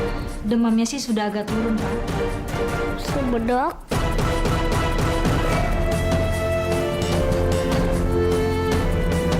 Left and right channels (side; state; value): both; identical; correlation 1.00